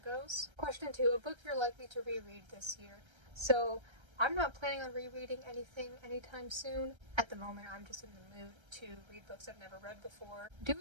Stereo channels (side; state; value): left; late; 1.3 ms